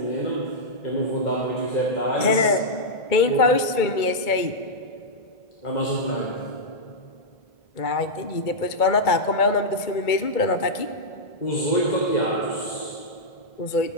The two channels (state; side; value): late; right; 2.2 ms